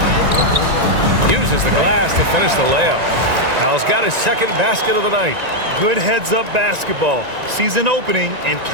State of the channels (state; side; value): late; left; 1.9 ms